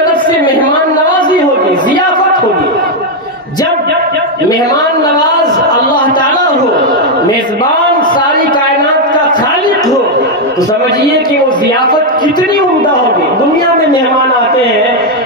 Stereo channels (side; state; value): both; normal; correlation 0.02